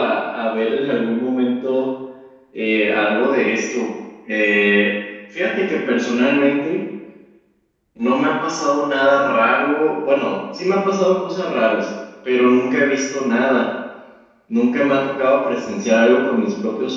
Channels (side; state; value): both; identical; correlation 1.00